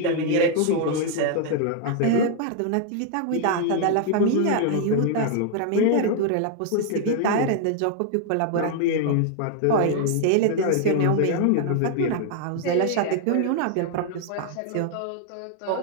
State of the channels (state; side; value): different; both; correlation 0.00